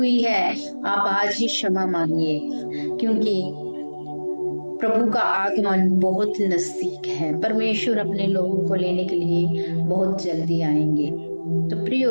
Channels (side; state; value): both; inverted; correlation -1.00